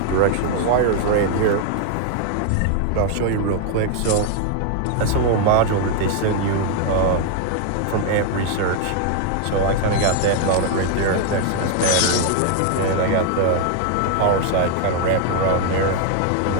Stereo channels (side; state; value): both; different; correlation 0.00